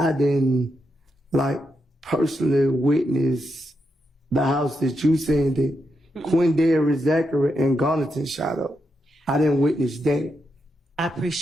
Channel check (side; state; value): both; normal; correlation 0.84